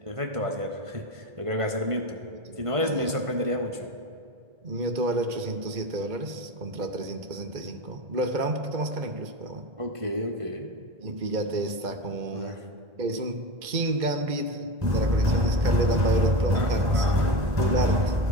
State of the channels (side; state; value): left; late; 1.5 ms